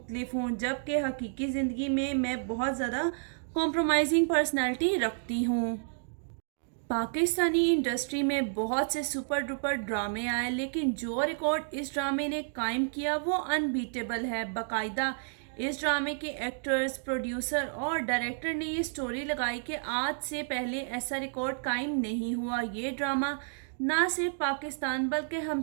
हूँ, जबकि हकीकी ज़िंदगी में मैं बहुत ज़्यादा कॉम्प्रोमाइजिंग पर्सनैलिटी रखती हूँ। पाकिस्तानी इंडस्ट्री में बहुत से सुपर डुपर ड्रामे आए, लेकिन जो रिकॉर्ड इस ड्रामे ने कायम किया वो अनबीटेबल है। बाकायदा इस ड्रामे के एक्टर्स, प्रोड्यूसर और डायरेक्टर ने ये स्टोरी लगाई कि आज से पहले ऐसा रिकॉर्ड कायम नहीं हुआ। ये ड्रामा ना सिर्फ पाकिस्तान बल्कि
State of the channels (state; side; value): silent; left; digital silence